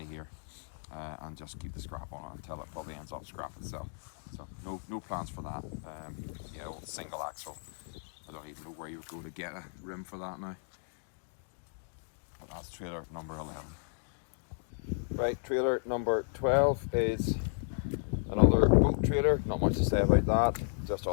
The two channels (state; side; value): silent; right; digital silence